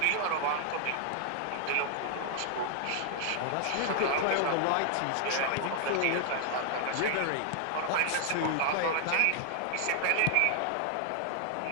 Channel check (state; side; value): different; both; correlation 0.00